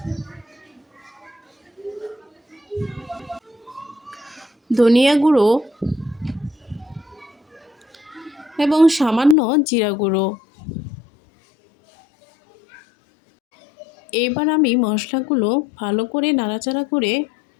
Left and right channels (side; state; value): right; drops out; at 9.3 s